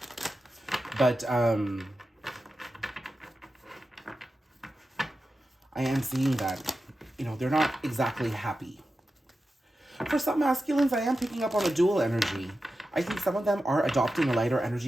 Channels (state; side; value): normal; both; correlation 0.92